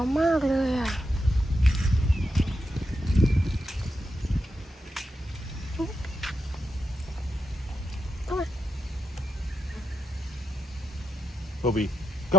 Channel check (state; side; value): normal; both; correlation 0.86